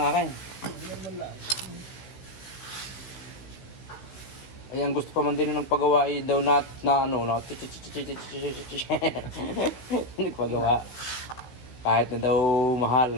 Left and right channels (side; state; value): right; late; 16 ms